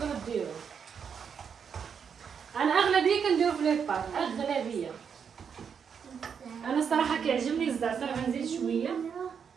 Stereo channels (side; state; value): left; quieter; 7.0 dB